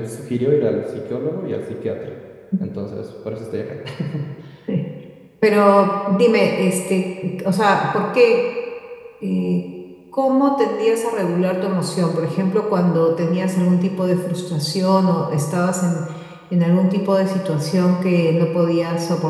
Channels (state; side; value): identical; both; correlation 1.00